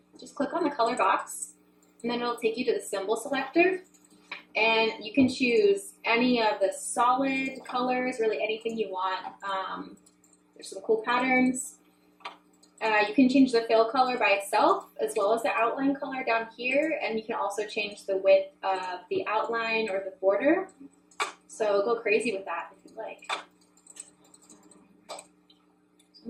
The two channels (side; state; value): both; identical; correlation 1.00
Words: Just click on the color box, and then it'll take you to the symbol selector. And you can choose any of the solid colors, really anything you want. There's some cool patterns. You can change the fill color by itself as well as the outline color down here, and you can also change the width of the outline or the border. So go crazy with that if you'd like.